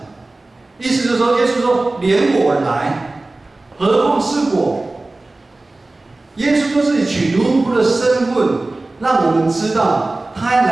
意思就是说，耶稣说：“连我来，何况是我？”耶稣说自己取奴仆的身份，让我们知道，他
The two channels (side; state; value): left; quieter; 3.0 dB